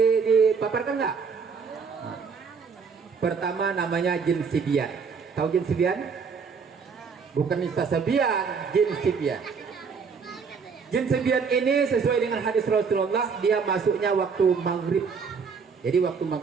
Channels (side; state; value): left; quieter; 5.6 dB